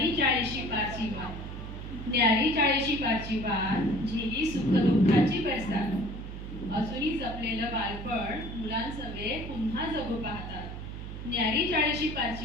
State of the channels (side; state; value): right; noise; hum, 9 dB below the sound